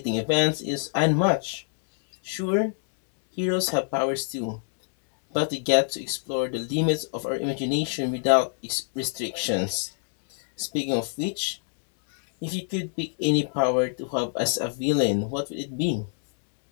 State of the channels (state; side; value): silent; right; 60 dB below the other